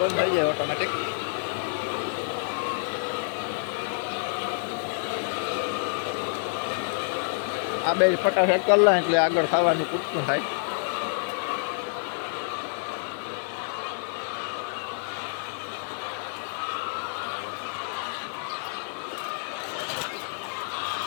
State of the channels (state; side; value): silent; right; digital silence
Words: બંધ થઈ જાય ઓટોમેટિક. આ બે ફટાફટ કરી લે એટલે આગળ ખાવાનું પૂરતું થાય.